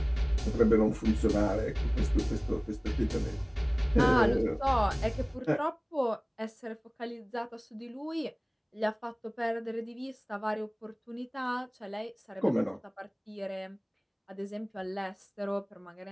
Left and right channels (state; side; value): identical; both; correlation 1.00